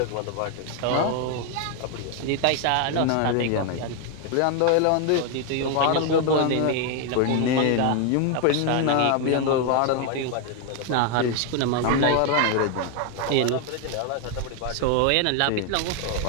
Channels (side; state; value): both; different; correlation 0.01